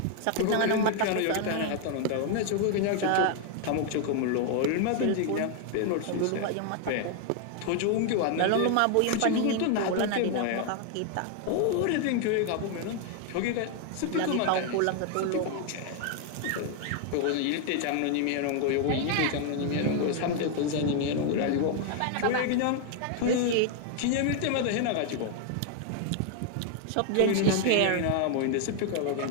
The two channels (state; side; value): different; both; correlation 0.00